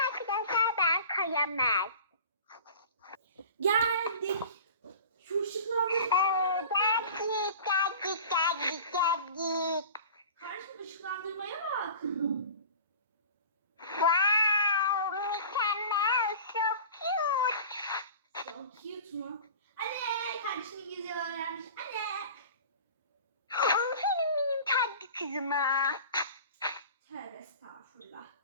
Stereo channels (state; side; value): inverted; both; correlation -0.39